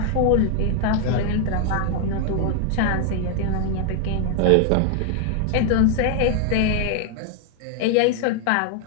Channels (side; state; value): both; different; correlation 0.00